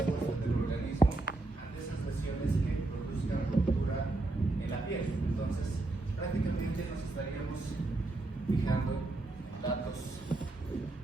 del organismo ante esas lesiones que produzcan ruptura en la piel. Entonces, prácticamente nos estaríamos fijando datos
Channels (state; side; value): quieter; left; 3.0 dB